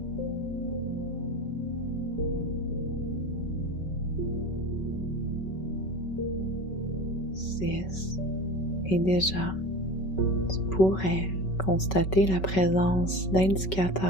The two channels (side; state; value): right; late; 5.3 ms